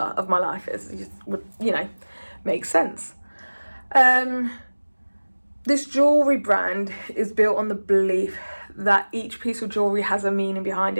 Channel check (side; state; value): both; inverted; correlation -1.00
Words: of my life, as it would, make sense. This jewellery brand is built on the belief that each piece of jewellery has a meaning behind